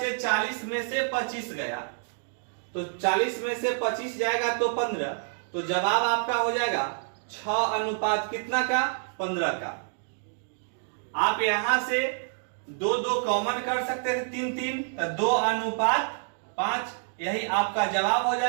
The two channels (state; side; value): silent; left; digital silence